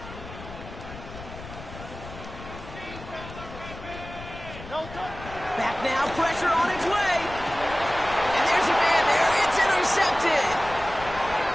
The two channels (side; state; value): left; noise; rumble, 14 dB below the sound